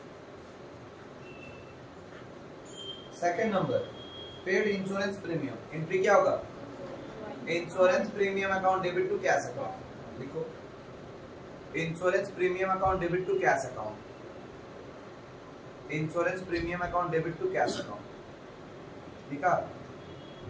Second number paid insurance premium, entry क्या होगा, insurance premium account debit to cash account, लिखो insurance premium account debit to cash account, insurance premium account debit to cash account, ठीक है।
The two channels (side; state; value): both; identical; correlation 1.00